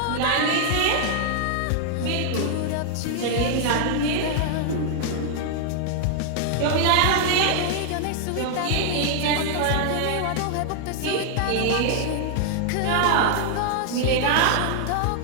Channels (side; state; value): both; different; correlation -0.01